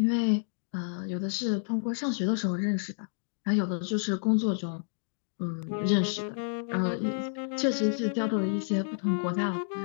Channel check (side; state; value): right; silent; digital silence